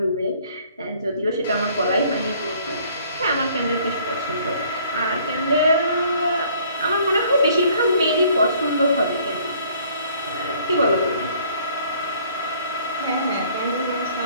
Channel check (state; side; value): inverted; both; correlation -0.58